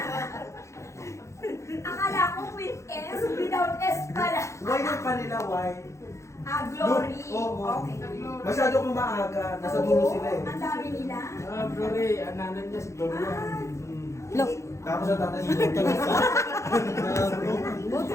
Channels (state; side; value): late; right; 0.14 ms